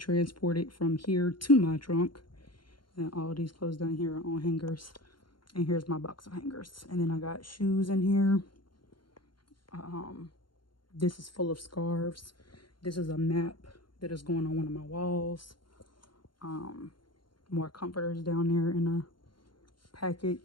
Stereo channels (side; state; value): right; late; 0.72 ms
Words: from here to my trunk. And all of these clothes down here are on hangers. And here's my box of hangers. And then I got shoes in here. This is full of scarves. This is a map that is going on one of my walls. More comforters down there in a